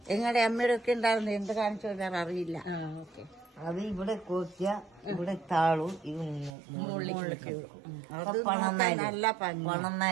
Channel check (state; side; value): drops out; left; at 6.5 s